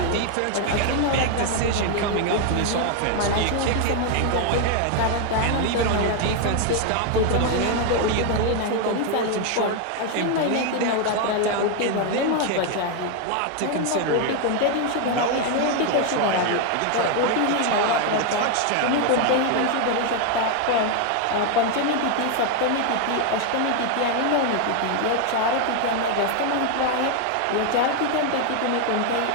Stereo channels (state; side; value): different; both; correlation 0.01